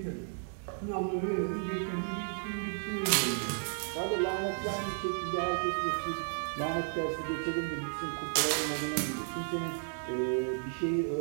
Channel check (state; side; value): silent; left; 56 dB below the other